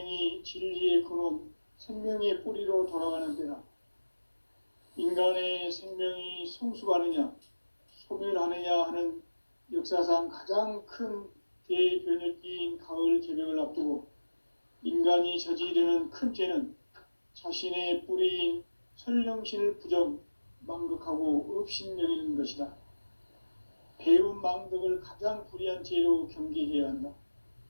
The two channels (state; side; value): inverted; both; correlation -1.00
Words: 진리의 근원, 생명의 뿌리로 돌아가는 때다. 인간의 생명이 성숙하느냐, 소멸하느냐 하는 역사상 가장 큰 대변혁기인 가을 개벽을 앞두고 인간이 저지르는 큰 죄는 자신의 뿌리인 설령신을 부정, 망극하고 업신여기는 것이다. 배움 망덕을 가장 불의한 죄로 경계해야 한다.